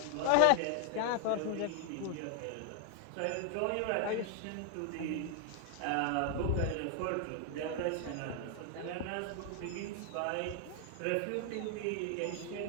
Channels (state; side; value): different; both; correlation 0.00